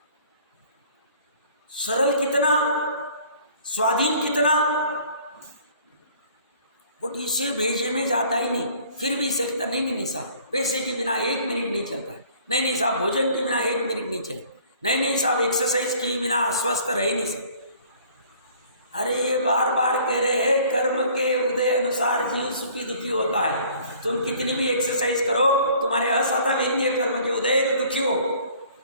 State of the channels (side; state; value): both; inverted; correlation -0.54